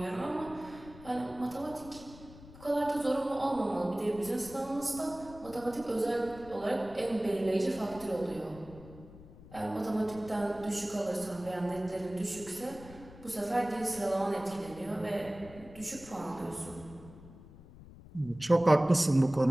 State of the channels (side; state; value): left; noise; rumble, 18 dB below the sound